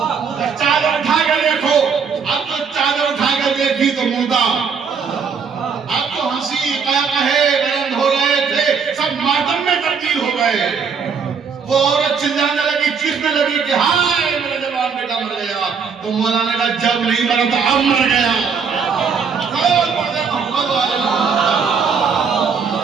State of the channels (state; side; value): quieter; left; 6.0 dB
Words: چادر اٹھا کے دیکھو. اب تو چادر اٹھا کے دیکھی تو مردہ. اب تو ہنسی قہقہے بلند ہو رہے تھے, سب ماتم میں تبدیل ہو گئے. وہ عورت چلانے لگی, چیخنے لگی کہ ہائے میرا جوان بیٹا مر گیا. تو مولا نے کہا جب نہیں مرا تو اب مر گیا.